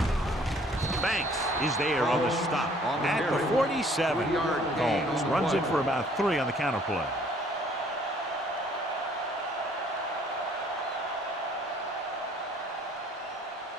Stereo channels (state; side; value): normal; both; correlation 0.59